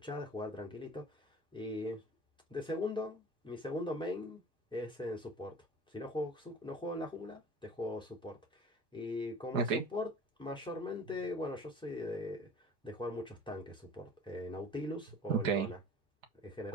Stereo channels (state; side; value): normal; both; correlation 0.42